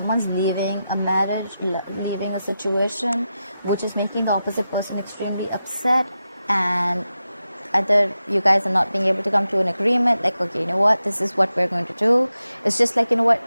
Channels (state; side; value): inverted; both; correlation -0.90